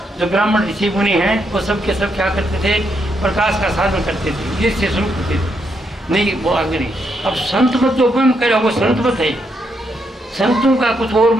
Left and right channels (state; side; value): normal; both; correlation 0.78